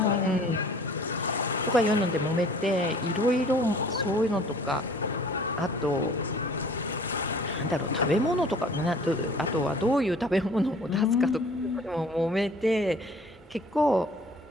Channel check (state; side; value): normal; both; correlation 0.51